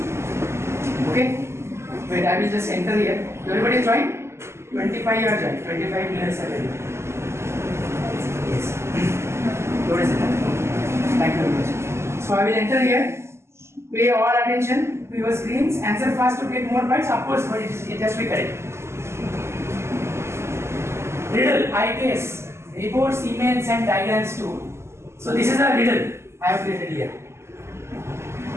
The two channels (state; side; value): late; left; 0.13 ms